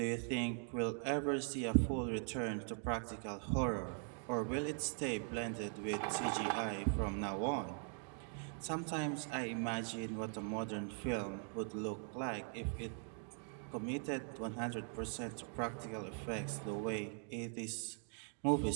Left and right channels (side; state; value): left; silent; 50 dB below the other